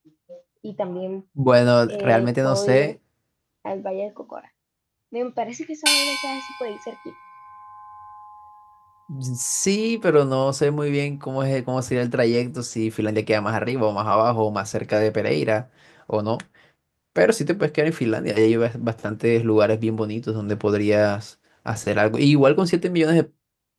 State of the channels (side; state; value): both; identical; correlation 1.00